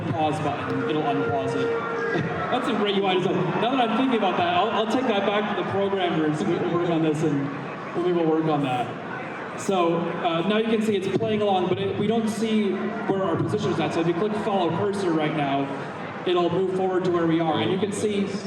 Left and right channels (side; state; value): both; identical; correlation 1.00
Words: pause button, it'll unpause it. That's a great UI design. Now that I'm thinking about that, I'll take that back to the programmers who work on this, and we will work on that. So now you can see it's playing along, but we don't see where our position is at. So if you click follow cursor right now, it'll move forward to where we are. And you can see